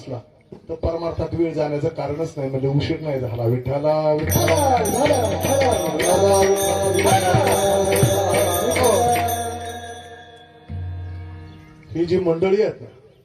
तर परमार्थात वेळ जाण्याचं कारणच नाही. म्हणजे उशीर नाही झाला. विठ्ठला ही जी मंडळी आहेत ना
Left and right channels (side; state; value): both; identical; correlation 1.00